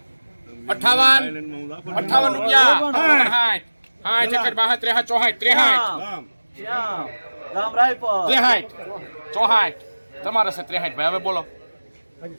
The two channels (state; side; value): inverted; both; correlation -1.00